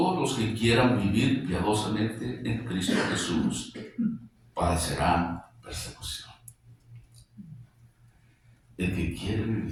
los que quieran vivir piadosamente en Cristo Jesús padecerán persecución. El que quiere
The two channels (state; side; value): identical; both; correlation 1.00